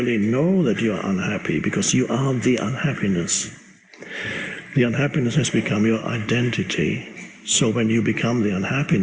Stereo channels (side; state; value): both; identical; correlation 1.00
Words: know that you're unhappy, because you are the unhappiness. The unhappiness has become your identity. So when you become the